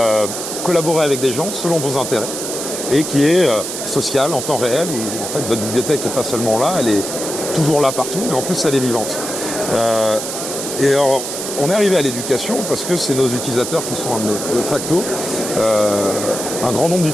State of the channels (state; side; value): noise; right; hiss, 6 dB below the sound